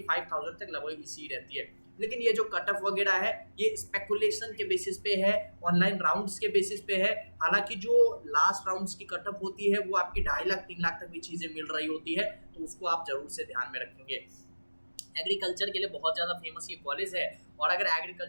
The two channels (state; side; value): inverted; both; correlation -1.00